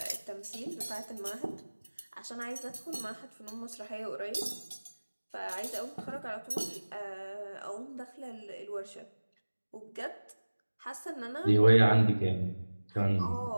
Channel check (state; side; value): inverted; both; correlation -1.00